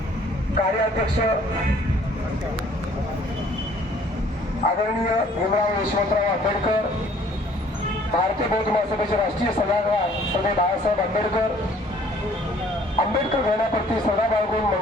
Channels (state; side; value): normal; both; correlation 0.57